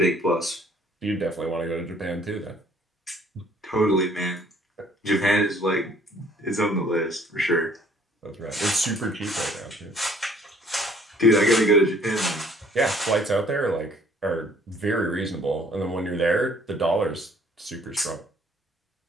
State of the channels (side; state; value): both; normal; correlation 0.59